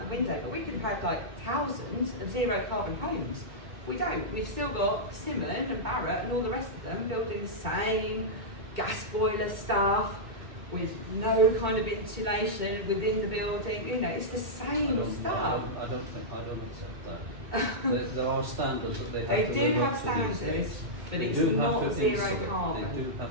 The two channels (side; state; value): left; late; 2.1 ms